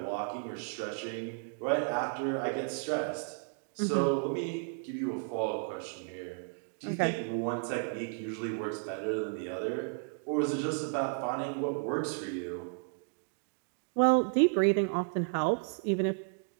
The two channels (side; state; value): left; silent; 56 dB below the other